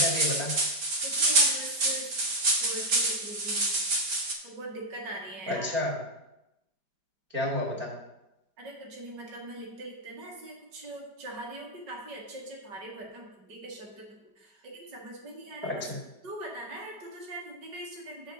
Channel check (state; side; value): late; left; 5.1 ms